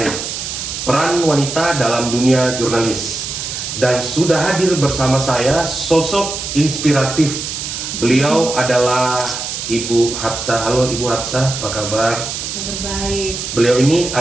peran wanita dalam dunia jurnalis. Dan sudah hadir bersama saya sosok inspiratif. Beliau adalah Ibu Hapsah. Halo Ibu Hapsah, apa kabar? Kabar baik. Beliau ini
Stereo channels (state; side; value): noise; right; hiss, 6 dB below the sound